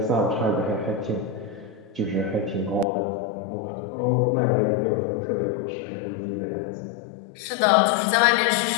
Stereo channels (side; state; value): right; drops out; at 2.9 s